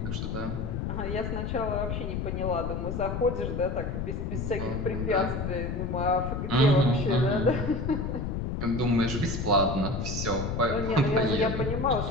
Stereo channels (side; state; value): left; noise; rumble, 2 dB below the sound